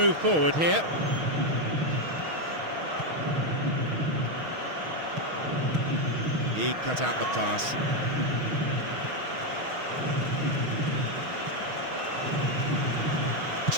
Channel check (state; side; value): late; left; 6.3 ms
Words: forward here. He cut out the pass.